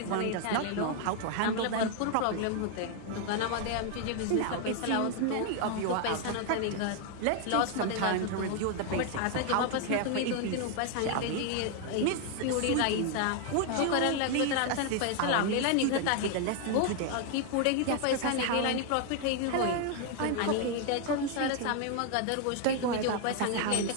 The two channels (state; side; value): different; both; correlation 0.00